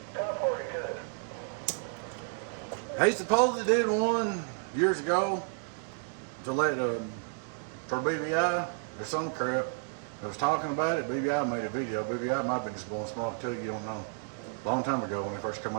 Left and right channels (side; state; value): left; silent; 57 dB below the other